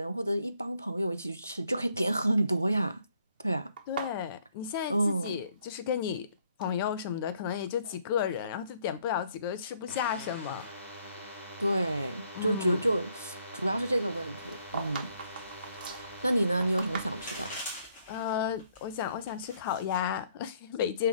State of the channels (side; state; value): both; inverted; correlation -0.69